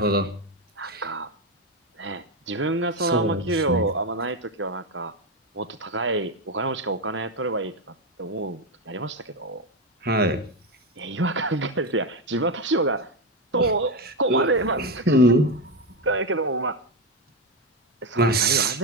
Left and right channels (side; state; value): both; normal; correlation 0.11